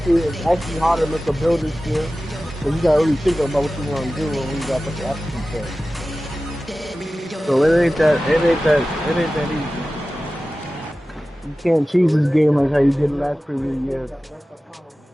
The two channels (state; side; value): normal; both; correlation 0.96